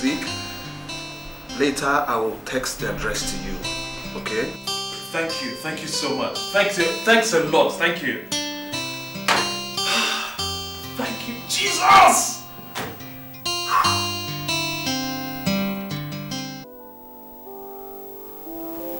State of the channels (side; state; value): both; identical; correlation 1.00